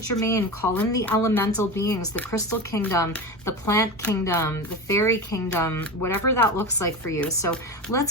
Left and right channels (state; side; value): normal; both; correlation 0.25